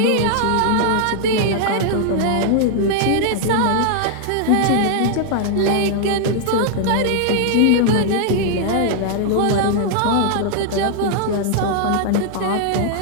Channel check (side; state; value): both; different; correlation -0.01